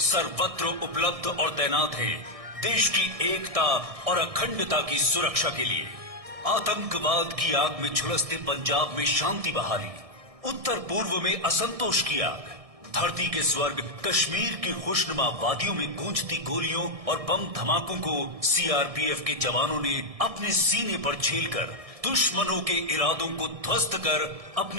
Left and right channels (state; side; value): late; left; 1.6 ms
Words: उपलब्ध और तैनात हैं देश की एकता और अखंडता की सुरक्षा के लिए। आतंकवाद की आग में झुलसते पंजाब में शांति बहाली, उत्तर पूर्व में असंतोष की आग, धरती के स्वर्ग कश्मीर की खुशनुमा वादियों में गूंजती गोलियों और बम धमाकों को सीआरपीएफ के जवानों ने अपने सीने पर झेलकर दुश्मनों के इरादों को ध्वस्त कर